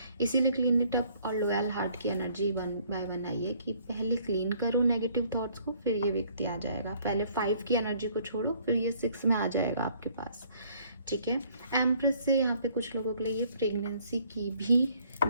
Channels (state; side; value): inverted; both; correlation -0.61